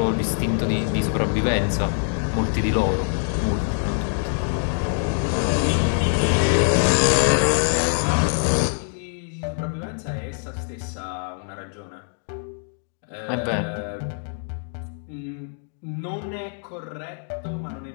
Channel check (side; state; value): right; silent; 63 dB below the other